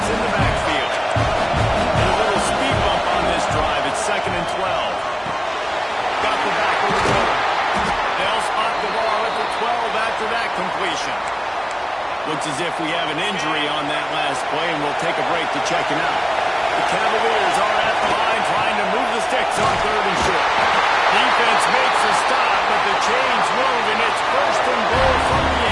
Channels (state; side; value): identical; both; correlation 1.00